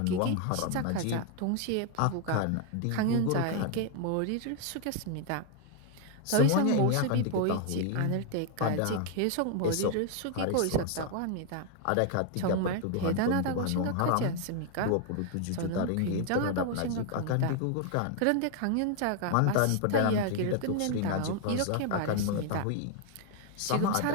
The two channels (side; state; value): both; different; correlation 0.00